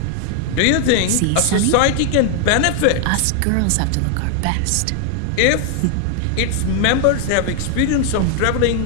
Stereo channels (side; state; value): both; different; correlation 0.00